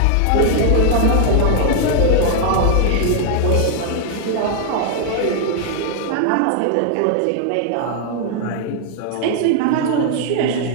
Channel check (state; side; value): different; both; correlation 0.00